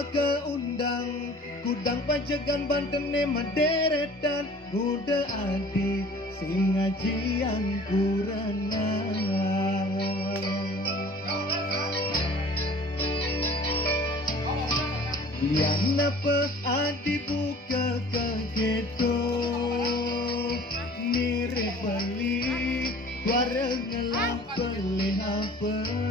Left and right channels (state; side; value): normal; both; correlation 0.47